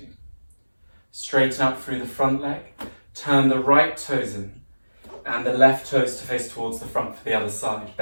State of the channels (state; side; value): inverted; both; correlation -1.00